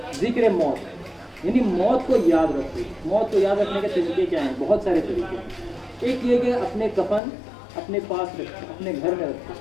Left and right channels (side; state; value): right; drops out; at 7.2 s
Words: ذکر موت، یعنی موت کو یاد رکھو۔ موت کو یاد رکھنے کے طریقے کیا ہیں؟ بہت سارے طریقے۔ ایک یہ کہ اپنے کفن اپنے پاس رکھو، اپنے گھر میں رکھو،